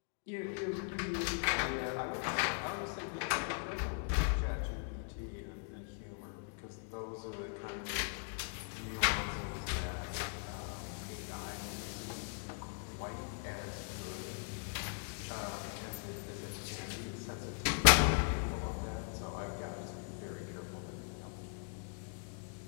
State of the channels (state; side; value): silent; right; 51 dB below the other